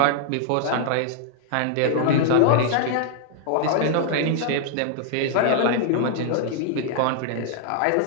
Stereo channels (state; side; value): different; both; correlation 0.00